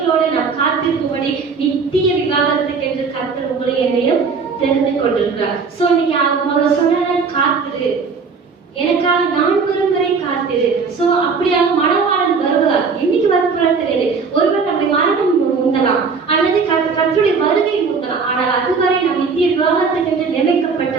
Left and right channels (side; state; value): left; quieter; 5.1 dB